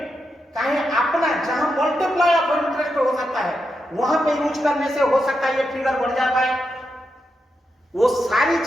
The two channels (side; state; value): both; normal; correlation 0.85